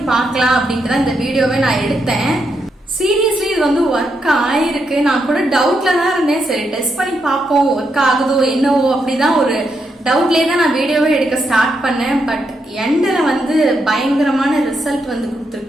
பார்க்கலாம் அப்படின்ட்டு தான் இந்த வீடியோவை நான் எடுத்தேன். சீரியஸ்லி இது வந்து ஒர்க் ஆயிருக்கு. நான் கூட டவுட்ல தான் இருந்தேன். சரி டெஸ்ட் பண்ணி பார்ப்போம், ஒர்க் ஆகுதோ என்னவோ அப்படிதான் ஒரு டவுட்லேயே தான் நான் வீடியோவே எடுக்க ஸ்டார்ட் பண்ணேன். பட் எண்டில் வந்து பயங்கரமான ரிசல்ட் வந்து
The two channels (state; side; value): normal; both; correlation 0.81